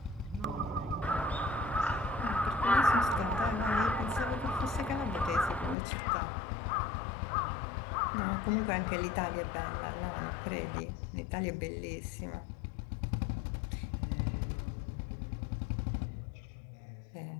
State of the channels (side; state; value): right; drops out; at 5.8 s